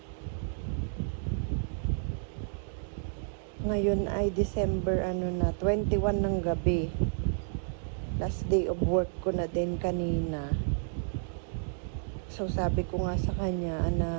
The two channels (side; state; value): left; silent; digital silence